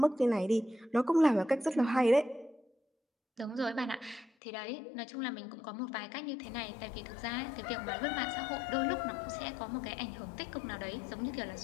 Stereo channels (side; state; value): right; drops out; at 4.3 s